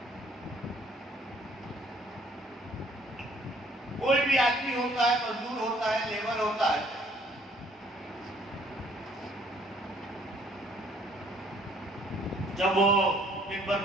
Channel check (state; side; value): normal; both; correlation 0.61